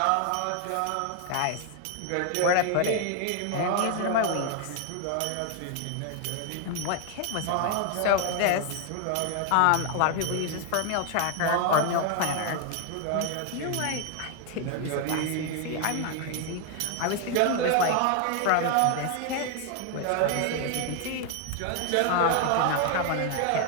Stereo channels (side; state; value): both; different; correlation 0.00